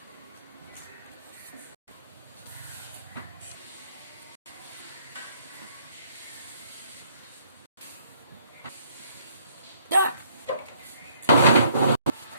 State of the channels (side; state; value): both; inverted; correlation -0.65